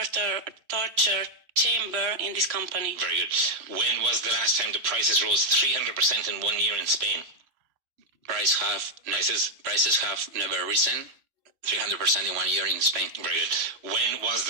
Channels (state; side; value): late; left; 3.2 ms